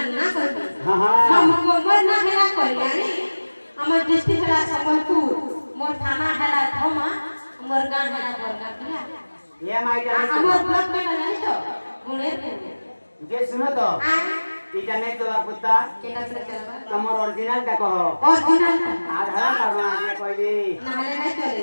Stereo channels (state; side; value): inverted; both; correlation -1.00